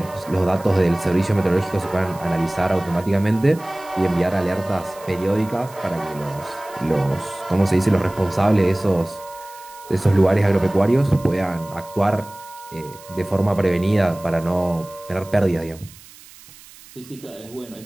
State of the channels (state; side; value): noise; right; hiss, 21 dB below the sound